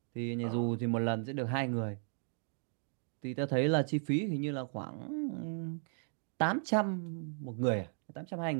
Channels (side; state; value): left; silent; 54 dB below the other